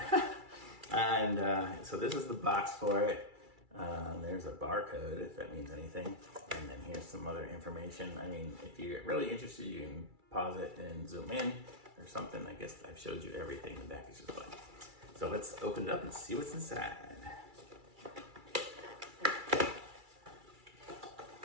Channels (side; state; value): left; late; 2.3 ms